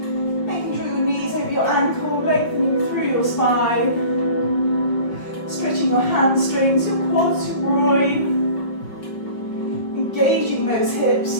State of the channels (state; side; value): late; right; 5.4 ms